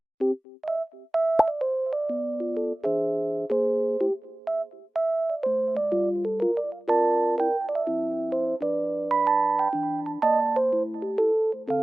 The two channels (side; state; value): both; normal; correlation 0.97